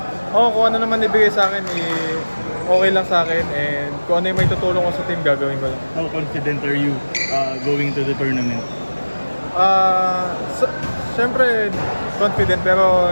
kung ano naman ibigay sa akin, okay lang sa akin, and kung ano yung may tutulong ko sa team, gagawin ko lang. How confident are you going to the tournament? Siyempre, confident, pero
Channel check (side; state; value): both; inverted; correlation -1.00